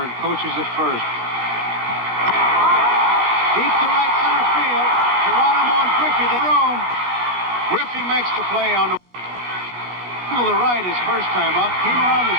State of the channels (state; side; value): late; left; 16 ms